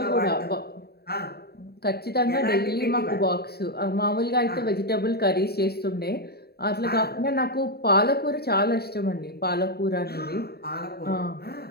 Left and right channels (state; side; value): late; right; 0.46 ms